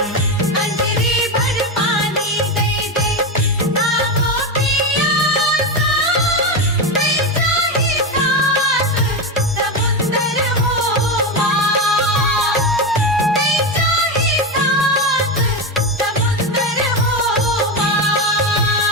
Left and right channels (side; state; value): both; normal; correlation 0.14